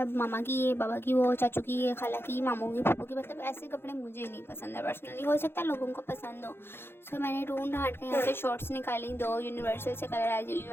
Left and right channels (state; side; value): late; right; 0.11 ms